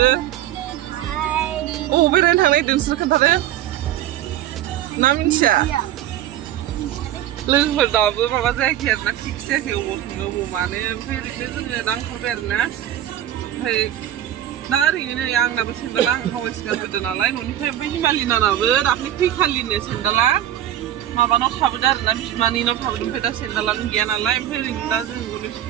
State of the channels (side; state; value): left; quieter; 12.0 dB